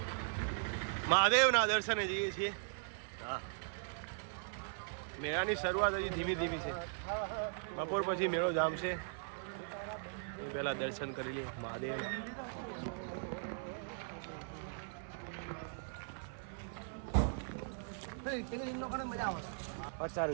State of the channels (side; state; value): left; silent; 52 dB below the other